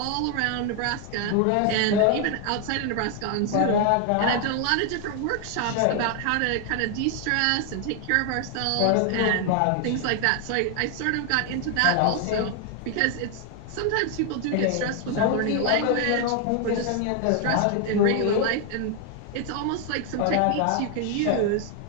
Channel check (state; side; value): different; both; correlation 0.00